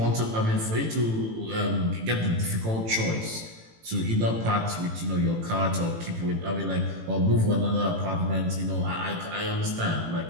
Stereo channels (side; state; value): left; late; 18 ms